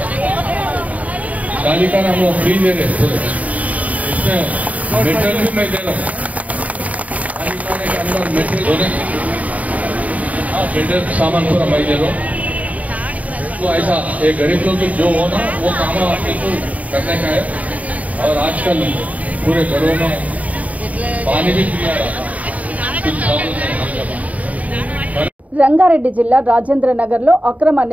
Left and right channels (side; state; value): left; late; 0.071 ms